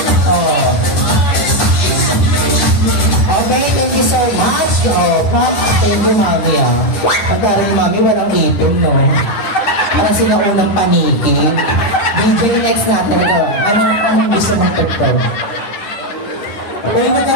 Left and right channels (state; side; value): late; right; 10 ms